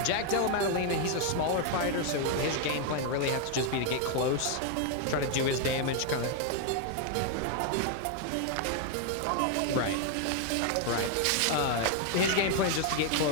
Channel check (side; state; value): both; different; correlation 0.00